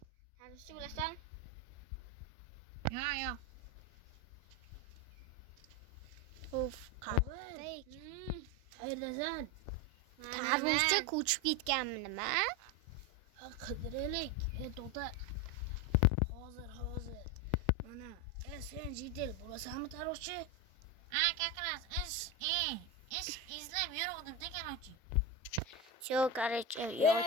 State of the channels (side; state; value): both; normal; correlation 0.14